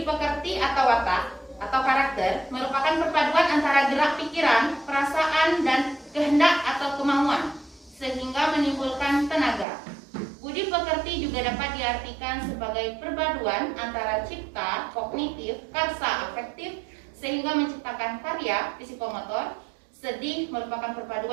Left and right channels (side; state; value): left; drops out; at 9.7 s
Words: pekerti atau watak atau karakter merupakan perpaduan antara gerak pikiran, perasaan, dan kehendak atau kemauan sehingga menimbulkan tenaga. Budi pekerti juga dapat diartikan sebagai perpaduan antara cipta, kognitif, karsa, afektif sehingga menciptakan karya psikomotor. Sedih merupakan